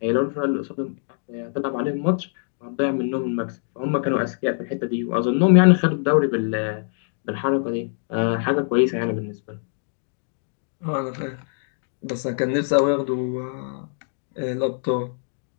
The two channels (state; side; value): silent; right; 63 dB below the other